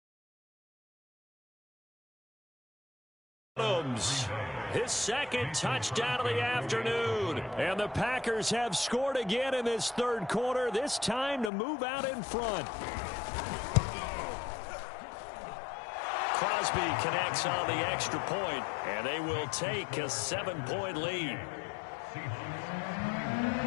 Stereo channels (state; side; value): drops out; right; at 11.5 s